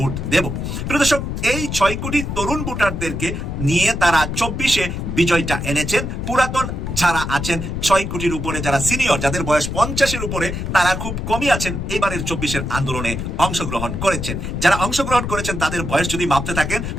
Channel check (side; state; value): left; noise; rumble, 4 dB below the sound